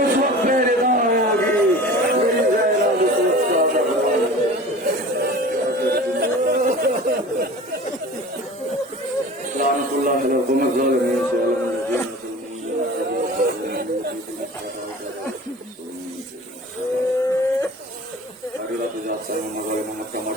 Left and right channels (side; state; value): both; normal; correlation 0.39